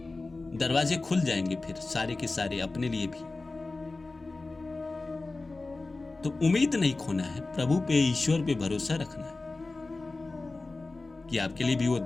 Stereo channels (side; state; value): right; quieter; 3.4 dB